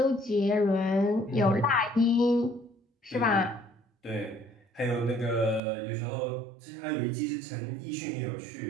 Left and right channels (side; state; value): left; drops out; at 5.6 s